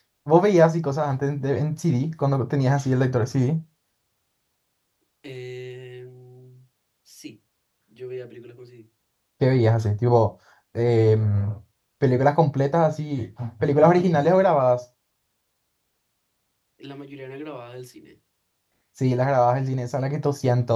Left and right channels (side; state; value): both; identical; correlation 1.00